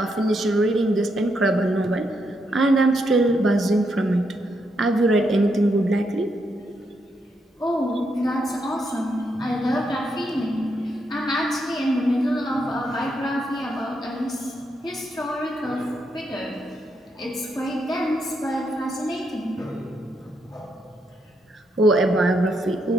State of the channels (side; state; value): both; normal; correlation 0.79